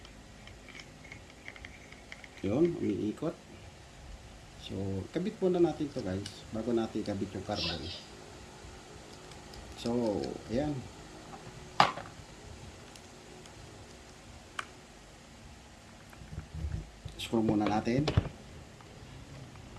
umiikot. So, kabit muna natin to guys, bago natin kabit yung carbon. So, ayan. Screw muna natin.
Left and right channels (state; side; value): identical; both; correlation 1.00